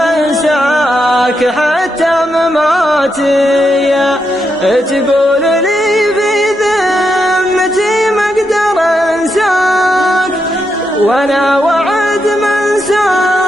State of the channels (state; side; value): normal; both; correlation 0.83